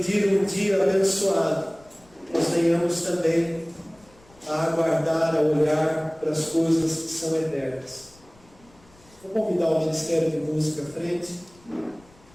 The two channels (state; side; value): noise; left; rumble, 28 dB below the sound